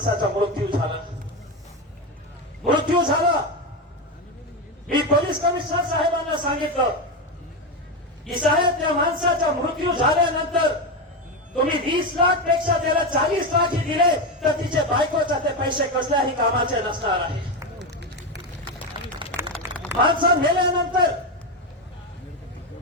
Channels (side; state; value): both; normal; correlation 0.13